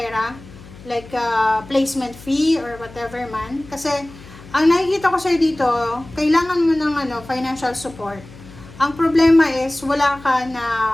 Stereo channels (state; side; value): noise; left; hum, 19 dB below the sound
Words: like placement fee or whatever man. Kasi ang nakikita ko sa'yo dito, kailangan mo ng financial support. Ang problema is wala ka na